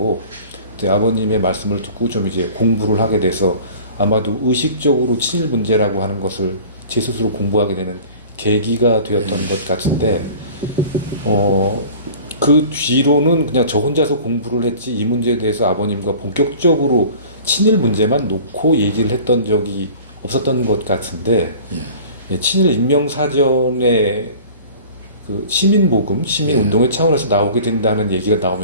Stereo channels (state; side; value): inverted; both; correlation -0.44